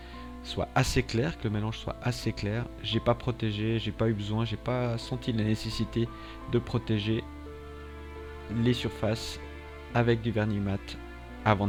soit assez claire, que le mélange soit assez clair. J'ai pas protégé, j'ai pas eu besoin, j'ai pas senti la nécessité de protéger les surfaces avec du vernis mat avant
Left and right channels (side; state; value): both; identical; correlation 1.00